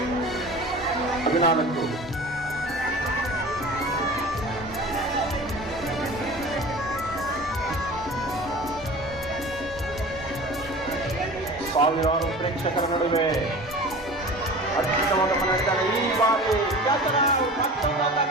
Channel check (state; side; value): normal; both; correlation 0.38